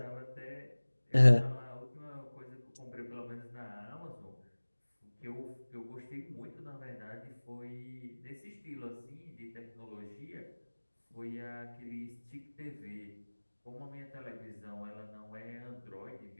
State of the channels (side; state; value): both; inverted; correlation -1.00